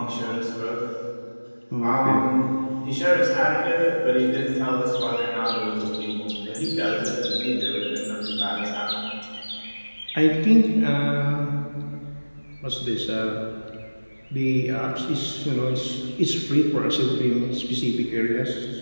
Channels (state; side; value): inverted; both; correlation -1.00